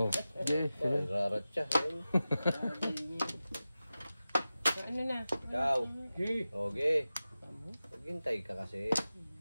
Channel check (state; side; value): inverted; both; correlation -0.95